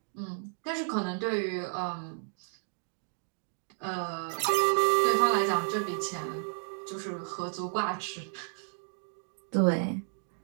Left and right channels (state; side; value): silent; left; digital silence